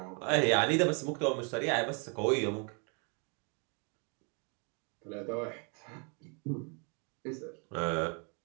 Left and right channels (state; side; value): quieter; left; 37.0 dB